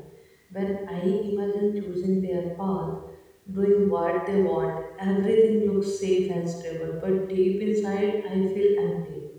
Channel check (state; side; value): identical; both; correlation 1.00